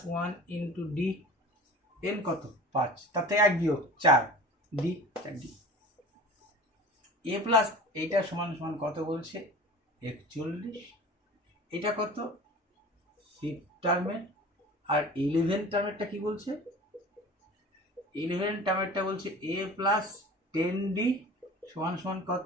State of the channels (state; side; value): normal; both; correlation 0.39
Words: one into D, n কত 5, তাতে 1 বিয়োগ 4, ডি 4d। a প্লাস এইটা সমান সমান কত বলছে 41, এটা কত 5th টার্মের, আর 11th টার্মেরটা কি বলছে, 11th টার্মেরটা বলছে a প্লাস 10d সমান সমান